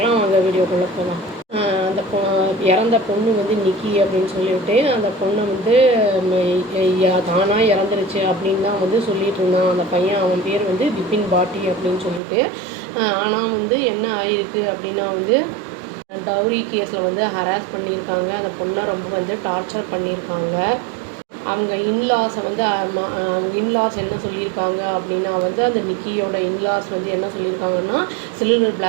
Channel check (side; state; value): left; drops out; at 12.2 s